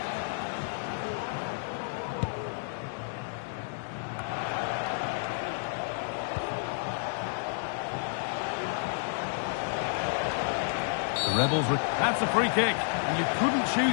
The Rebels... That's a free kick. And you couldn't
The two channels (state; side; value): silent; right; digital silence